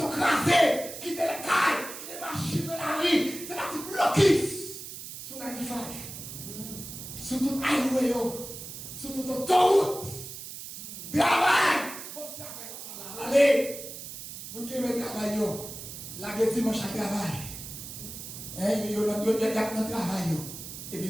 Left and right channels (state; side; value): noise; right; hiss, 10 dB below the sound